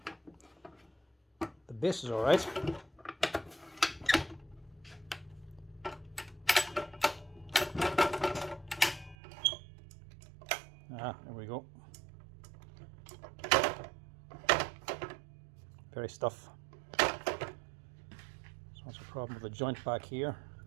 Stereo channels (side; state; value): left; drops out; at 9.2 s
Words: The base is alright. There we go. Very stiff. So that's a problem with the joint back here,